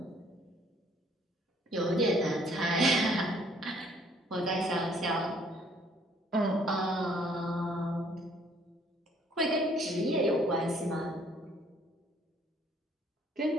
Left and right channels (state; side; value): normal; both; correlation 0.62